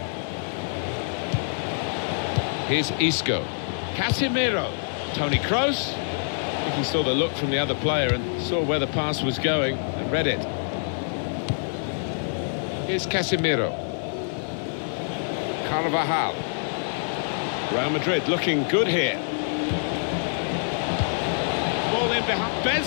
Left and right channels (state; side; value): silent; right; digital silence